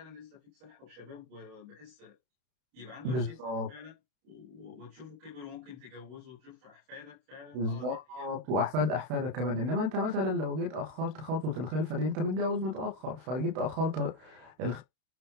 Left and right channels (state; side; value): late; left; 32 ms